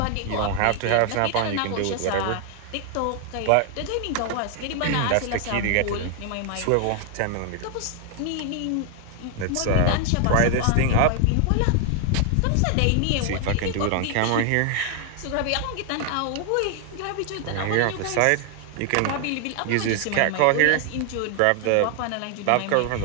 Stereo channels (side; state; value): both; different; correlation 0.00